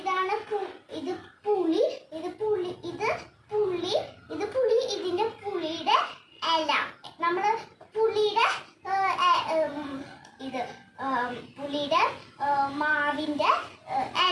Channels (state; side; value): identical; both; correlation 1.00